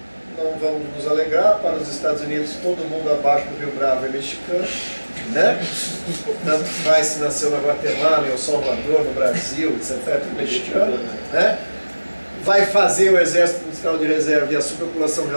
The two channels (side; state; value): both; inverted; correlation -1.00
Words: não vamos nos alegrar, para os Estados Unidos todo mundo abaixo do Rio Bravo é mexicano, né? Tanto faz se nasceu na Guatemala, em El Salvador, no Brasil, etc. É tudo mexicano, né? Vai fazer o exército industrial de reserva e a superpopulação